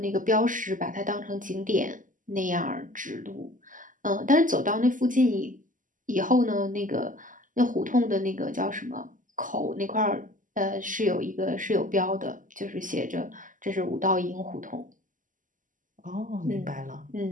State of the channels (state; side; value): late; left; 0.38 ms